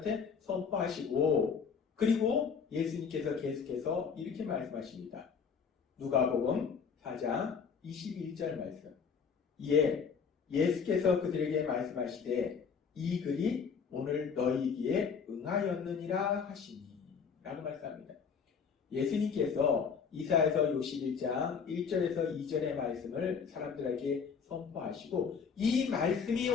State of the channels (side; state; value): right; quieter; 6.2 dB